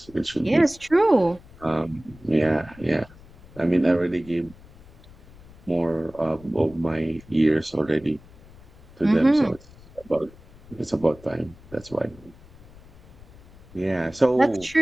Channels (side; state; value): left; noise; rumble, 22 dB below the sound